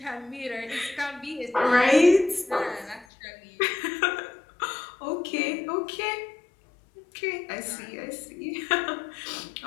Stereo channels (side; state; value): right; drops out; at 3.1 s